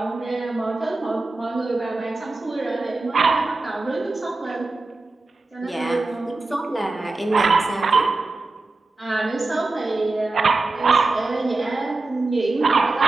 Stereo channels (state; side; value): quieter; left; 3.3 dB